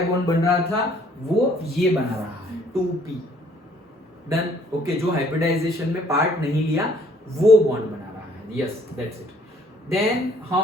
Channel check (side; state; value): both; normal; correlation 0.61